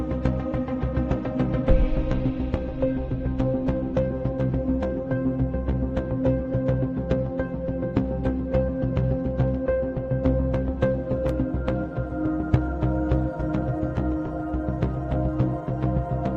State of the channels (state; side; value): identical; both; correlation 1.00